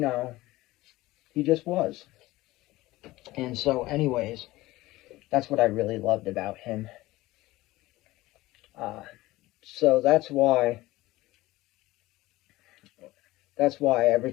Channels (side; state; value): right; quieter; 18.4 dB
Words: just was. And so, anyways, that's what I really loved about him. Uh, so that's why every